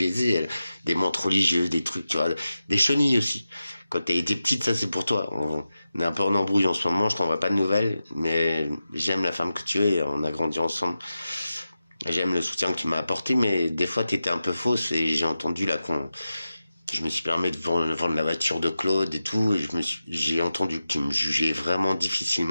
des mantes religieuses, des trucs, tu vois, des chenilles aussi. Quand t'as été petite, ça c'est pour toi. On est un peu en embrouille en ce moment, je t'envoie pas de nouvelles, mais j'aime la femme que tu es, on a grandi ensemble. J'aime le soutien que tu m'as apporté, mais des fois t'étais un peu fausse et j'ai entendu là je me suis permis de vendre la voiture de Claude et tout, et j'ai entendu que tu me jugeais vraiment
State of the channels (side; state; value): both; inverted; correlation -0.92